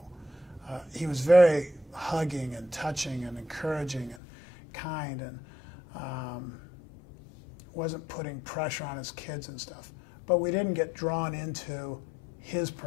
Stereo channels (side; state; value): right; drops out; at 4.2 s